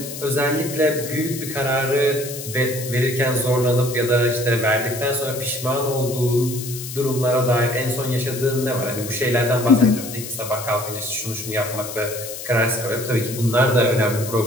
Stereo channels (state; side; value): noise; left; hiss, 10 dB below the sound